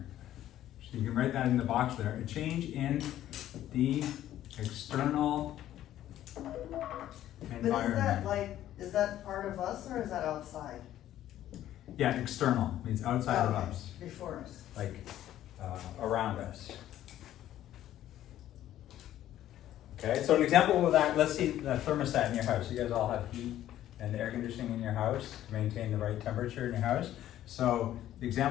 So you can write that in the box there, a change in the external But environment. is that part of us or is that outside? Yeah, external means outside of Okay, us, before us. like around us. Okay, so an example of that, let's see the thermostat in your house. You guys all have heat and air conditioning in your house to maintain the right temperature in your house. So the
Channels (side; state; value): right; quieter; 12.6 dB